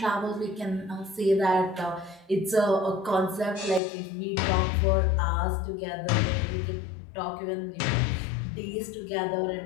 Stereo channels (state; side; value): drops out; right; at 3.8 s